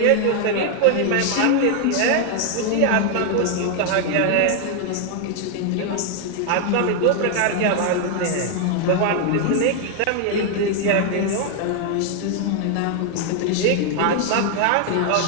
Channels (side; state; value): both; different; correlation 0.00